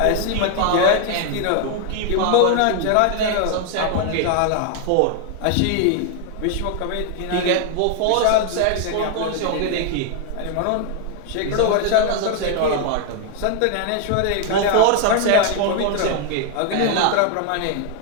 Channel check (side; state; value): both; different; correlation 0.00